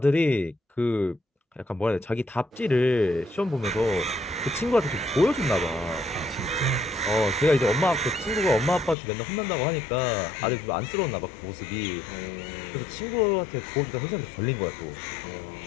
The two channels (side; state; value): right; drops out; at 9.0 s